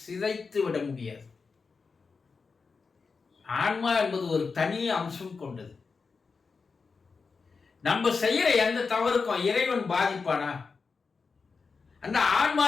சிதைத்து விட முடியாது. ஆன்மா என்பது ஒரு தனி அம்சம் கொண்டது. நம்ம செய்யற எந்த தவறுக்கும் இறைவன் பாதிப்பானா? அந்த ஆன்மா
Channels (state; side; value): quieter; right; 4.8 dB